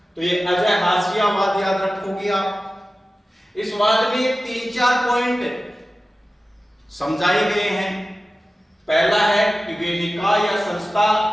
तो ये अजय हाशियावाद याद रखोगे आप। इस वाद में 3-4 पॉइंट समझाए गए हैं। पहला है कि वे निकाय या संस्था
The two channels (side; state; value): both; normal; correlation 0.95